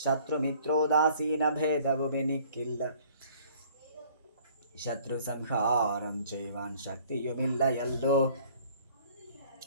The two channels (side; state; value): both; inverted; correlation -0.56